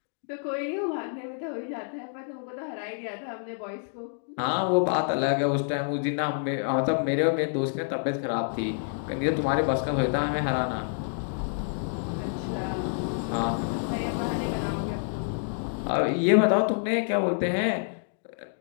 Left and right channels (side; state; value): right; silent; digital silence